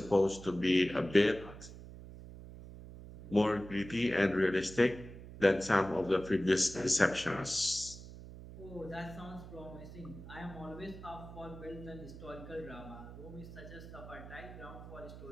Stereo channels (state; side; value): noise; right; hum, 14 dB below the sound